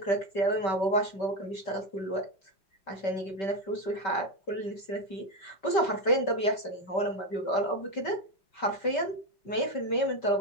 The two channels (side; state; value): right; late; 5.2 ms